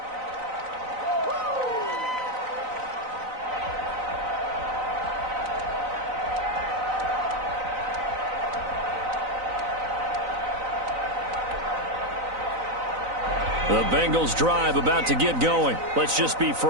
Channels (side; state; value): left; late; 4.0 ms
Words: The Bengals drive about to get going. Let's just be